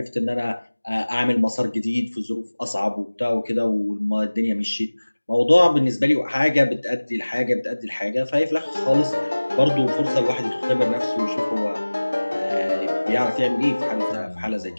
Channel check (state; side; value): inverted; both; correlation -1.00